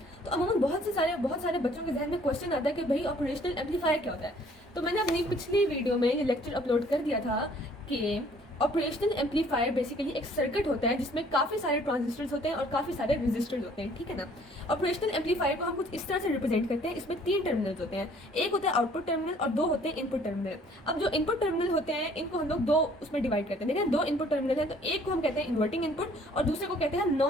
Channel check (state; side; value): normal; both; correlation 0.58